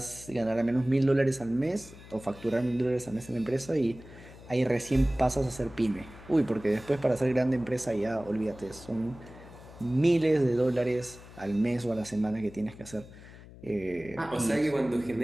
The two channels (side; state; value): left; noise; hum, 18 dB below the sound